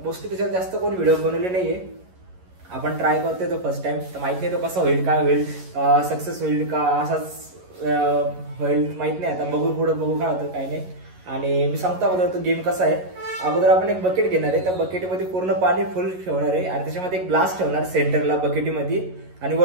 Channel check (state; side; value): late; left; 11 ms